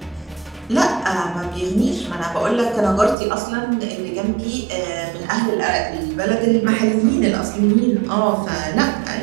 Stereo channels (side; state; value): left; drops out; at 3.2 s